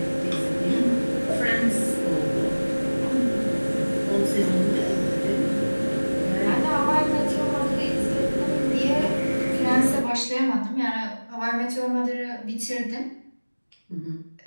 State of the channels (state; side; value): inverted; both; correlation -1.00